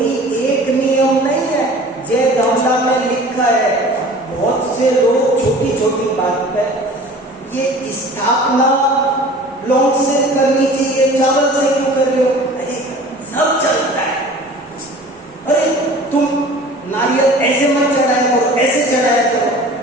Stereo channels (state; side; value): normal; both; correlation 0.43